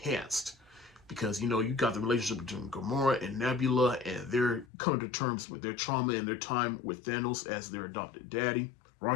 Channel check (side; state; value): right; drops out; at 4.7 s